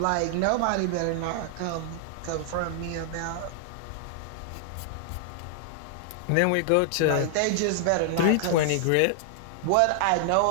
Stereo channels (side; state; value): both; different; correlation 0.00